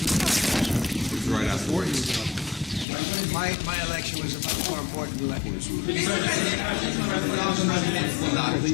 the prize? It was right after. My election was a much more important election.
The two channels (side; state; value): right; drops out; at 2.9 s